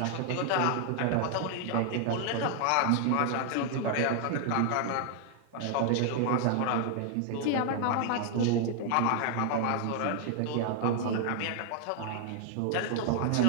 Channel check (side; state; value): both; different; correlation 0.00